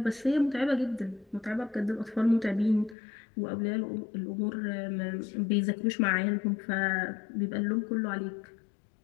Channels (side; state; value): right; drops out; at 3.0 s